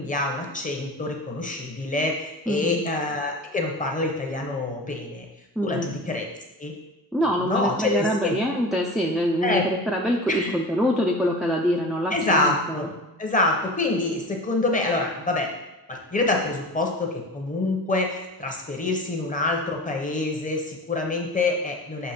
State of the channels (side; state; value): both; normal; correlation 0.33